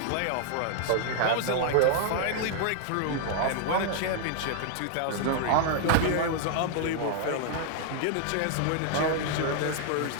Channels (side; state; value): both; different; correlation 0.00